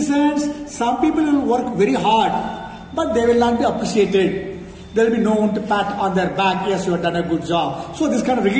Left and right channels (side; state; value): both; identical; correlation 1.00